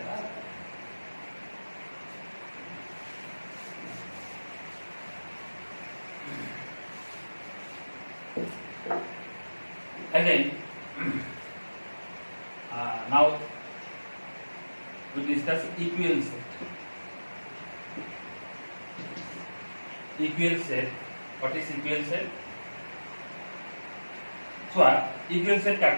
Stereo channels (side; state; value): both; inverted; correlation -1.00